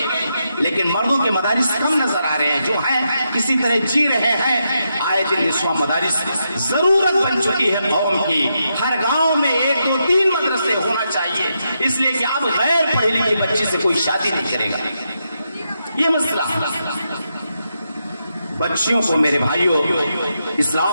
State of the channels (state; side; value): inverted; both; correlation -0.83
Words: لیکن مردوں کے مدارس کم نظر آ رہے ہیں، جو ہیں کسی طرح جی رہے ہیں۔ آئے دن نسواں مدارس ضرورت بن چکی ہے قوم کی، ہر گاؤں میں 1 2 3 مدرسے ہونا چاہیے، اس لیے کہ اب غیر پڑھی لکھی بچی سے کوئی شادی نہیں کرے گا۔ یہ مسئلہ بچیوں کو میرے بھائیوں